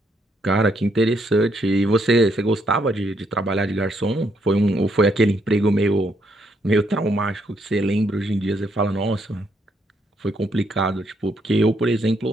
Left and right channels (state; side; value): normal; both; correlation 0.74